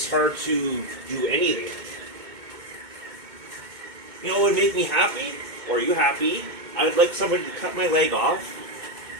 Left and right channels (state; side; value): late; left; 2.2 ms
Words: hard to do anything. You know what would make me happy? Or are you happy? I would like somebody to cut my leg off,